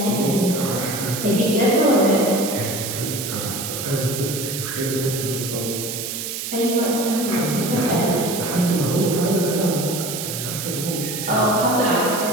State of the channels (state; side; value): noise; right; hiss, 5 dB below the sound